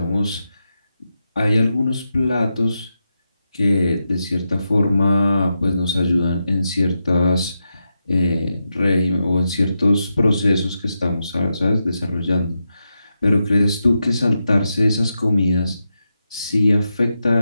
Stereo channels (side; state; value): both; inverted; correlation -0.87